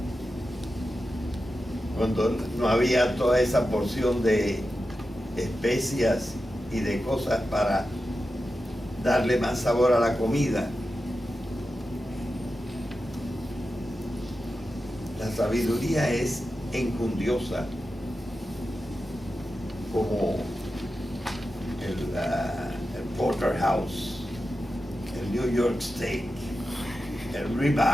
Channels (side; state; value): both; normal; correlation 0.91